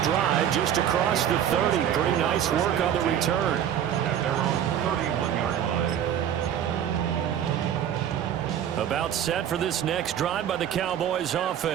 just across the 30. Pretty nice work on the return. At their own 31-yard line. About set for this next drive by the Cowboys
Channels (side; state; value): left; quieter; 9.9 dB